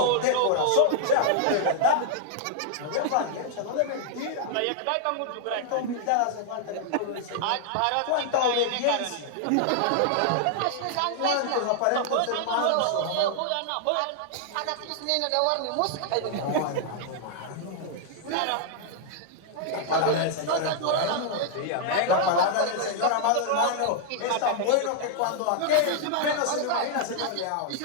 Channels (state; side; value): different; both; correlation 0.00